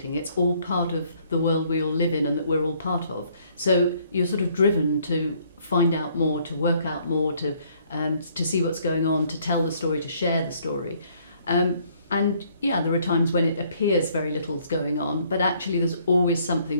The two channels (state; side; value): inverted; both; correlation -0.64